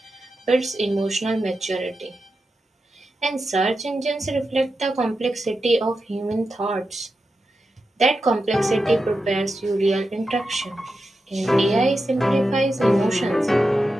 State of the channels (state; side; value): normal; both; correlation 0.89